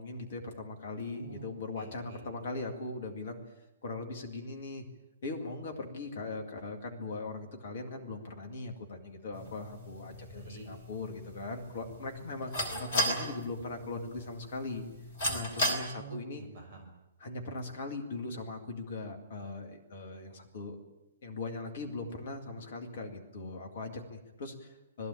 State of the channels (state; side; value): inverted; both; correlation -0.43